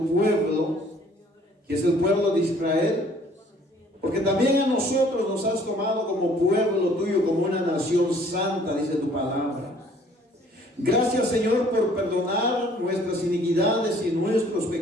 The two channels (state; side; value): normal; both; correlation 0.57